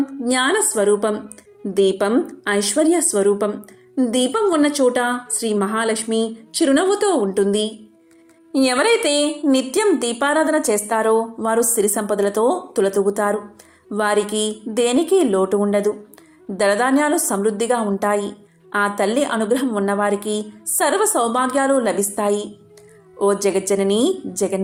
జ్ఞాన స్వరూపం, దీపం ఐశ్వర్య స్వరూపం. దీపం ఉన్న చోట శ్రీ మహాలక్ష్మి చిరునవ్వుతో ఉంటుంది. ఎవరైతే నిత్యం దీపారాధన చేస్తారో వారు సిరి సంపదలతో తులతూగుతారు. వారికి దేనికి లోటు ఉండదు. ధనధాన్యాలు సమృద్ధిగా ఉంటాయి. ఆ తల్లి అనుగ్రహం ఉన్నవారికి సర్వ సౌభాగ్యాలు లభిస్తాయి. ఓ జగజ్జనని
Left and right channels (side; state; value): both; identical; correlation 1.00